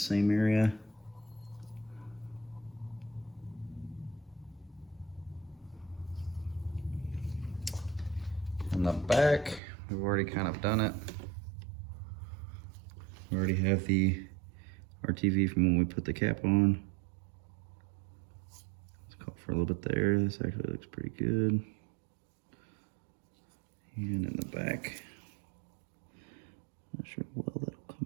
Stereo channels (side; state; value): left; drops out; at 9.6 s